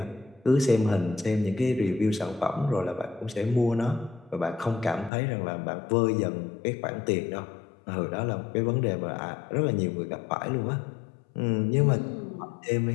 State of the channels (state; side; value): drops out; right; at 5.1 s